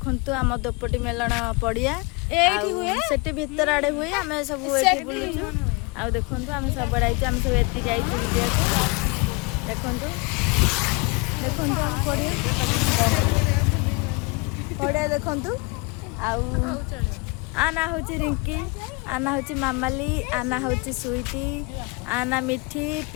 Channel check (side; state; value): right; quieter; 28.3 dB